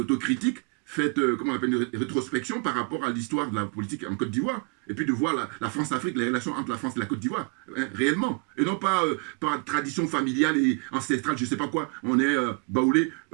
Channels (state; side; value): quieter; left; 35.2 dB